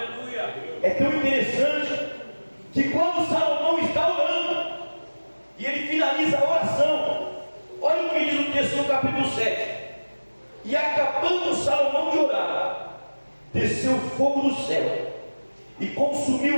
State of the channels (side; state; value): both; inverted; correlation -1.00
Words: É tão interessante que quando Salomão está orando e ele finaliza a oração, olha o que diz o texto no capítulo 7. E acabando Salomão de orar, desceu fogo do céu e consumiu